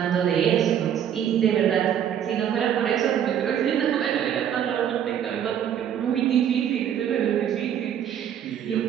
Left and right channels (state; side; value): quieter; left; 9.4 dB